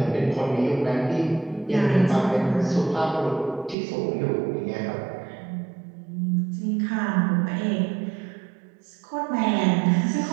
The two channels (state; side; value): drops out; left; at 3.8 s